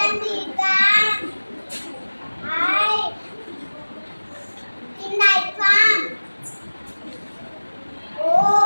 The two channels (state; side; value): inverted; both; correlation -1.00